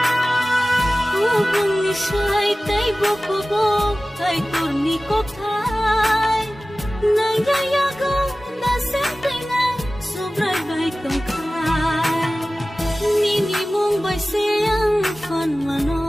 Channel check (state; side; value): normal; both; correlation 0.97